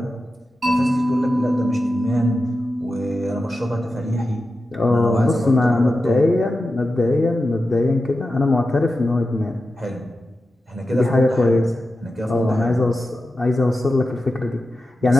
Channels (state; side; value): normal; both; correlation 0.92